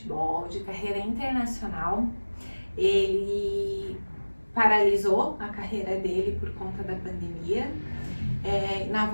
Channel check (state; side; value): inverted; both; correlation -1.00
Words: de carreira internacional. Ele paralisou a carreira dele por conta da pandemia. Na